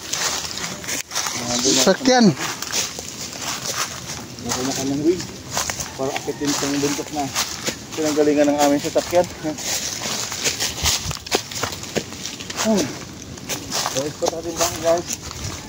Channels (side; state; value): both; identical; correlation 1.00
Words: Sakyan. Nakunakan ng wig. Para akitin itong buntok na pinanggalingan ng aming sasakyan. Guys, pa natin bang guys?